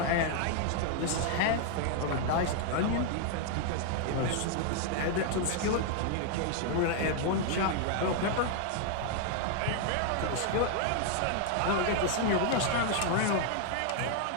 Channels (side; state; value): both; different; correlation 0.00